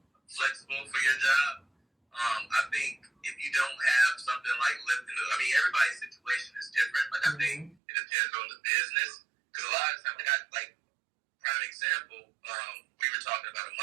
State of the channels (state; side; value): drops out; left; at 7.8 s